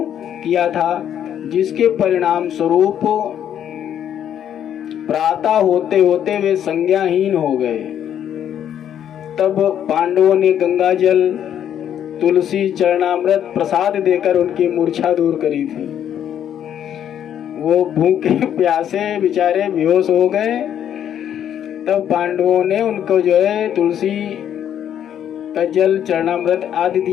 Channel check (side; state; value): right; quieter; 9.8 dB